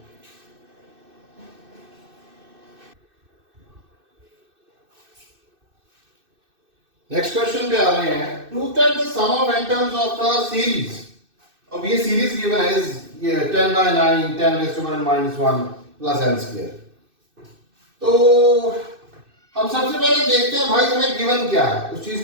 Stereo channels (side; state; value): left; late; 2.6 ms